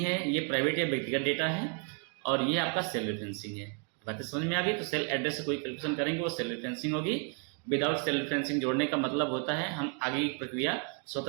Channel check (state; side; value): quieter; left; 38.7 dB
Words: है, ये प्राइवेट या व्यक्तिगत डेटा है और ये आपका सेल रेफरेंसिंग है। बातें समझ में आ गई। तो सेल एड्रेस से कोई कैलकुलेशन करेंगे वो सेल रेफरेंसिंग होगी। विदाउट सेल रेफरेंसिंग जोड़ने का मतलब होता है हम आगे की प्रक्रिया